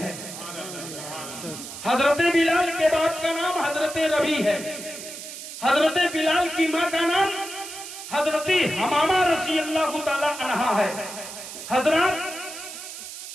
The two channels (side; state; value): right; noise; hiss, 11 dB below the sound